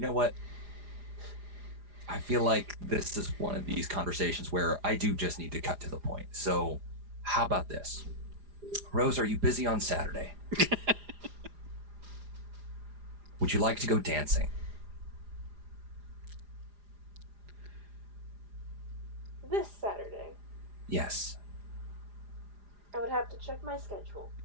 know what? I feel like this is one of these conversations where I do just need to cut to the point. So, how about this? Rose, are you busy on Saturday? Would you like to go dancing? This Saturday. Yes. I would have to check my schedule.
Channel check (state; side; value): late; left; 4.9 ms